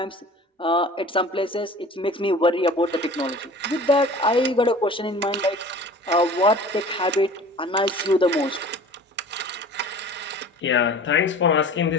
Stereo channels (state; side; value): normal; both; correlation 0.43